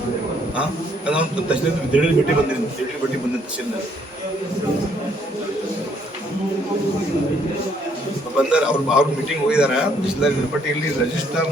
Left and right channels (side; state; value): both; normal; correlation 0.67